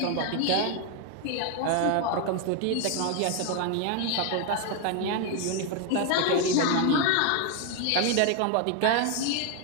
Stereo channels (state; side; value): different; both; correlation 0.01